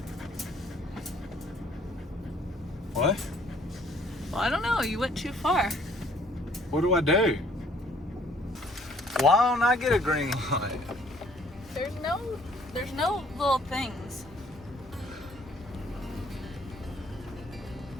What? Well, I don't know. You went too far. What do I do? Why don't I get a green light? There's no little things.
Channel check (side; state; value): both; normal; correlation 0.60